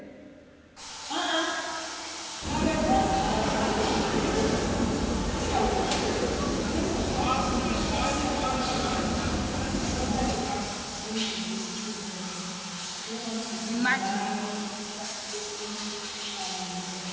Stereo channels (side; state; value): both; identical; correlation 1.00